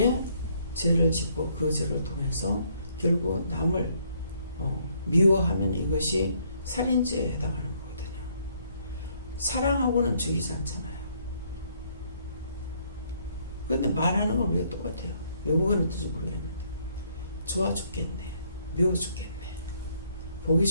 죄를 짓고 그 죄를 통해서 결국 남을 미워하면 이것이 살인죄에 해당하는 거거든요. 사랑하고는 죽이지 않잖아요. 근데 말하는 건 우리가 똑같아요. 외국어는 어떤지 모르겠는데 좋아 죽겠네, 미워 죽겠네, 보기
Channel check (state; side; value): inverted; both; correlation -0.68